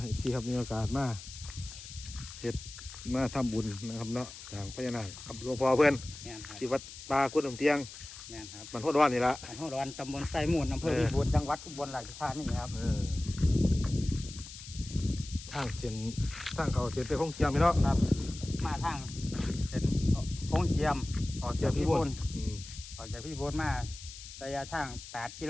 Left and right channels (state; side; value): noise; left; hiss, 13 dB below the sound